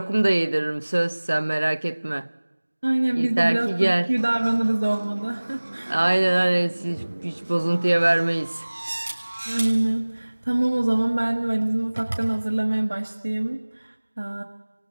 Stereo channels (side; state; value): both; inverted; correlation -1.00